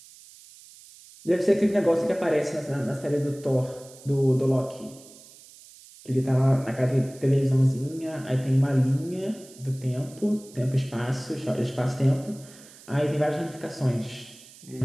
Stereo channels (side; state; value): right; noise; hiss, 22 dB below the sound